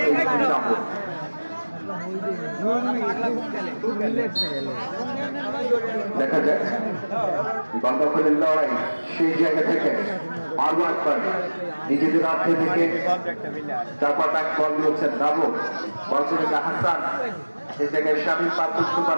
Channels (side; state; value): both; inverted; correlation -1.00